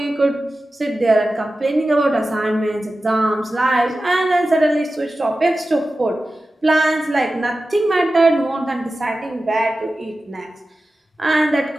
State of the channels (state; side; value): normal; both; correlation 0.94